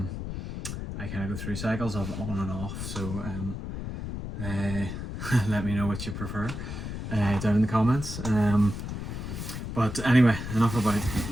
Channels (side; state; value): left; noise; rumble, 6 dB below the sound